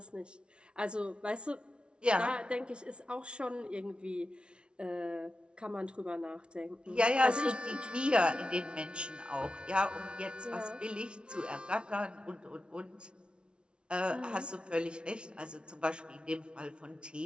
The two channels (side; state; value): left; late; 0.057 ms